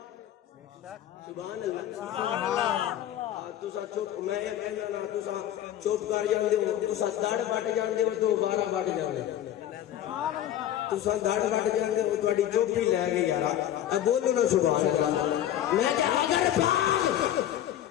سبحان اللہ. تسا چپ، میں یہ کہنا نا تسا چپ کر جاندے ہو، تسا دڑ بٹ جاندے ہو تو بارہ بٹ جاندے، تسا دڑ بٹ جاندے ہو، تہاڈی چپ ہی لے گئی یار. بولو نا سبحان اللہ. میں کہ اگر باغ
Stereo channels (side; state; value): right; quieter; 11.6 dB